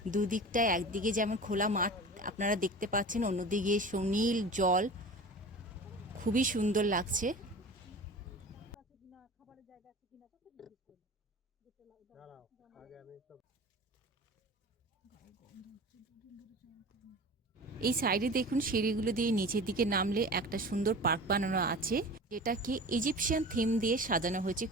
দুদিকটায়, একদিকে যেমন খোলা মাঠ আপনারা দেখতে পাচ্ছেন, অন্যদিকে সুনীল জল, খুবই সুন্দর লাগছে। এই সাইডে দেখুন সিঁড়িগুলো দিয়ে নিচের দিকে নামলে একটা সুন্দর পার্ক বানানো আছে, যেটাকে ইজিপশিয়ান থিম দিয়ে সাজানো হয়েছে,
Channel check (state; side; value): normal; both; correlation 0.36